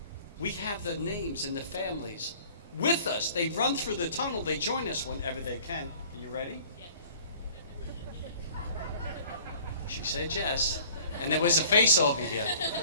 We have the names and the families with us. They run through the tunnel. They join us whenever they can. Are you ready? Yes. She said yes. And there was a face over here.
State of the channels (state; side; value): inverted; both; correlation -0.50